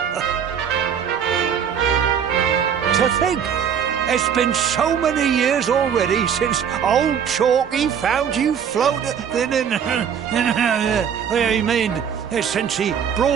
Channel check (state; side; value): quieter; left; 7.9 dB